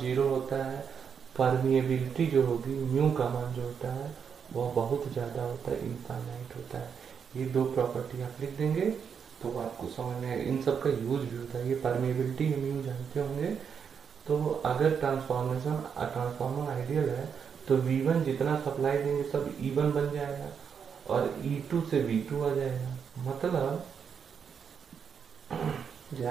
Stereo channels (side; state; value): left; quieter; 6.9 dB